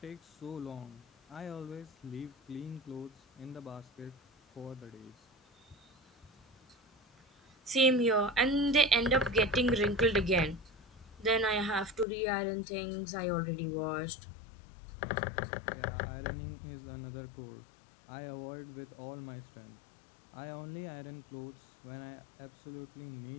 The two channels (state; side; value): drops out; right; at 12.1 s